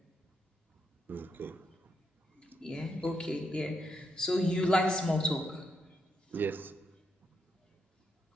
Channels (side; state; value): both; normal; correlation 0.80